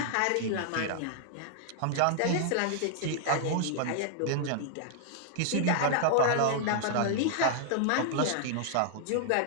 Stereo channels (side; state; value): both; different; correlation -0.01